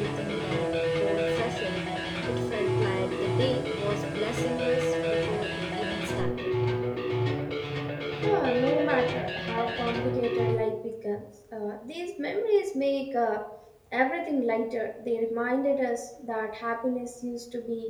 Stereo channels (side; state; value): both; identical; correlation 1.00